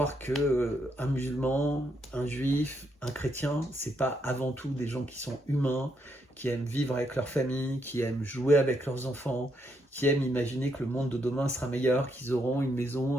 que un musulman, un juif, un chrétien, c'est pas avant tout des gens qui sont humains, qui aiment vivre avec leur famille, qui aiment jouer avec leurs enfants, qui aiment imaginer que le monde de demain sera meilleur, qu'ils auront une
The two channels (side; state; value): both; normal; correlation 0.77